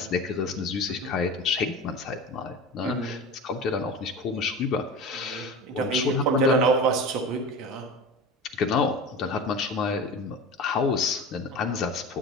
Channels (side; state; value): both; normal; correlation 0.31